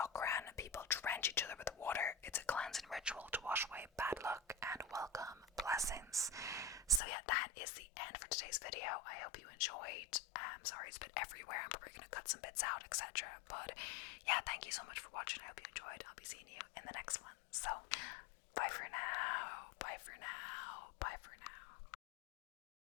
people drench each other with water. It's a cleansing ritual to wash away bad luck and welcome blessings. So yeah, that is the end for today's video. I hope you enjoyed. Sorry it's a bit everywhere. I'm probably going to cut some bits out, etc. But yeah, thank you so much for watching. I hope you enjoyed. I'll be seeing you in the next one. So, bye for now. Bye for now. Bye for now.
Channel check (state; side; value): drops out; right; at 7.0 s